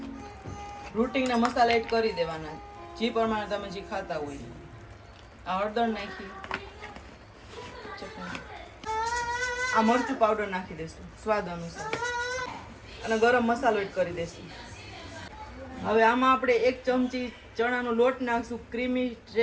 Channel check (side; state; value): both; identical; correlation 1.00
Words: રૂટિંગના મસાલા એડ કરી દેવાના જે પ્રમાણે તમે જે ખાતા હોય। આ હળદર નાખી, આ મરચું પાવડર નાખી દઈશું સ્વાદ અનુસાર, અને ગરમ મસાલો એડ કરી દઈશું। હવે આમાં આપણે 1 ચમચી ચણાનો લોટ નાખશું ક્રીમી